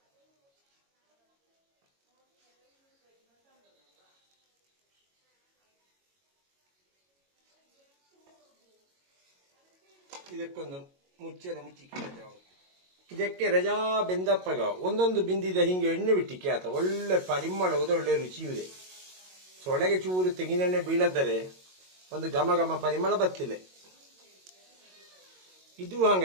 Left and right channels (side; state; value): left; late; 22 ms